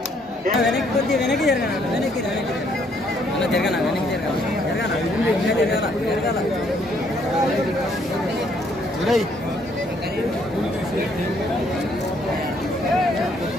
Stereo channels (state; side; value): normal; both; correlation 0.68